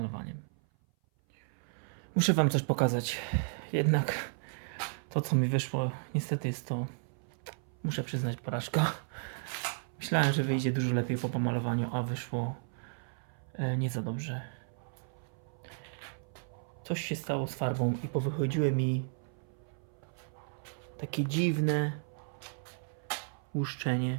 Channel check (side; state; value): left; silent; 55 dB below the other